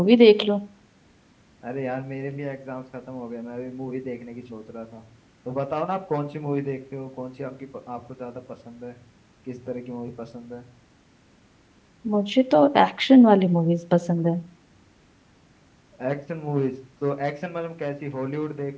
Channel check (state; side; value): identical; both; correlation 1.00